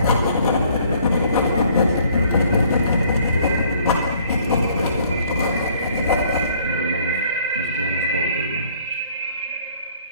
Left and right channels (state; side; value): inverted; both; correlation -0.60